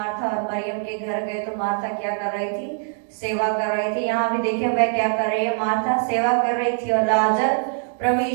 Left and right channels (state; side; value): silent; left; digital silence